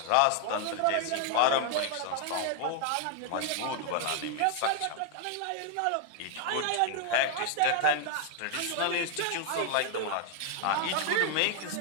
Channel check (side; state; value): both; different; correlation 0.00